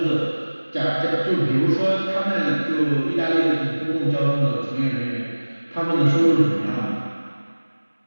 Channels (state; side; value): inverted; both; correlation -1.00